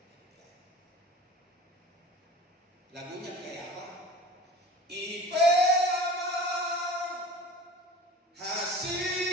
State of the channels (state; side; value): normal; both; correlation 0.39